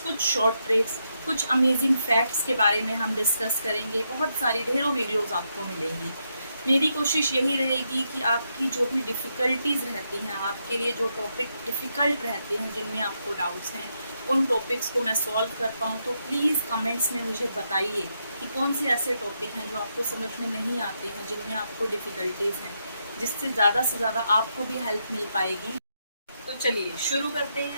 कुछ शॉर्ट ट्रिक्स, कुछ अमेजिंग फैक्ट्स के बारे में हम डिस्कस करेंगे। बहुत सारी ढेरों वीडियोज़ आपको मिलेंगी। मेरी कोशिश यही रहेगी कि आपकी जो भी डिफ़िकल्टीज़ रहती हैं, आपके लिए जो टॉपिक डिफ़िकल्ट रहते हैं, जिनमें आपको डाउट्स हैं, उन टॉपिक्स को मैं सॉल्व कर पाऊँ। तो प्लीज़ कमेंट्स में मुझे बताइए कि कौन से ऐसे टॉपिक हैं जो आपको समझ में नहीं आते हैं, जिनमें आपको डिफ़िकल्टीज़ हैं, जिससे ज़्यादा से ज़्यादा आपको भी हेल्प मिल पाएगी। तो चलिए शुरू करते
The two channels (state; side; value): inverted; both; correlation -0.81